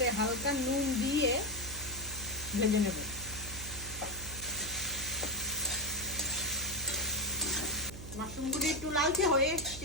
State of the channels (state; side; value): noise; right; hum, 11 dB below the sound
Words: হালকা নুন দিয়ে ভেজে নেব। মাশরুমগুলি একটু লালচে হয়ে